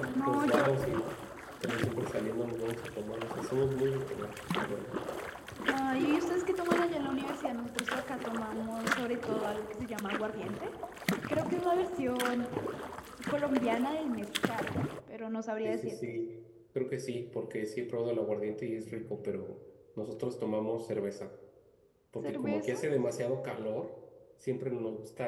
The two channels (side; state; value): both; identical; correlation 1.00